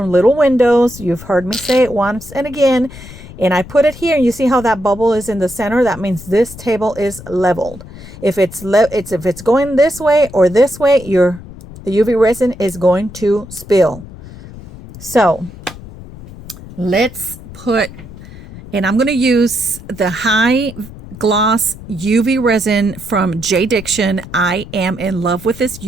Little Windows. You've heard me say it once and again. And I put it here, and you see how that bubble is in the center? That means this table is leveled. If it's going this way or this way, the UV resin is going to spill. So let's put, and I'm going to use the high gloss UV resin from J Diction. I am in love with this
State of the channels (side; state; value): left; noise; rumble, 16 dB below the sound